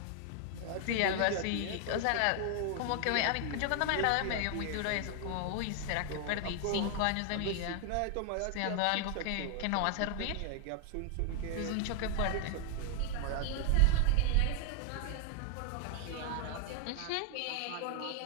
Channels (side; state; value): both; different; correlation 0.00